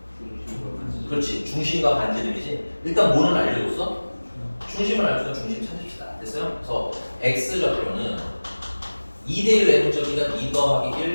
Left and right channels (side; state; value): both; inverted; correlation -1.00